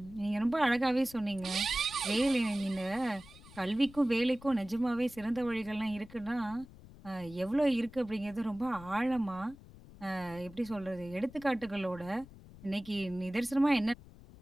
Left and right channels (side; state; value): left; noise; rumble, 19 dB below the sound